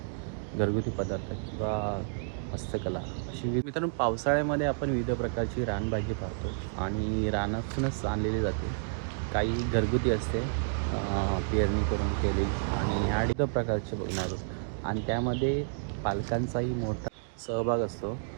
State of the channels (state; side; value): silent; left; digital silence